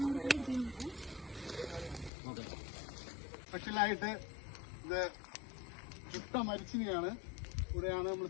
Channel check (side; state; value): right; drops out; at 2.1 s